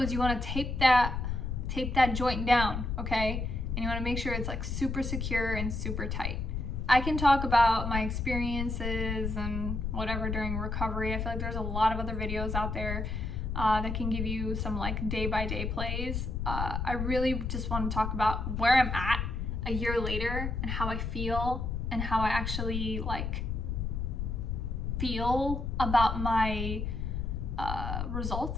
is you want to tape that joint down, okay? And you want to make sure it's like super secure and super tight. I can talk about my experiences and whatever during recovery. I feel like there's a lot of other videos out there that can give you some like day-by-day plays. I really just want to talk about where I'm at a year later and how I feel and how I actually like feel about my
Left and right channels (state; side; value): noise; left; rumble, 2 dB below the sound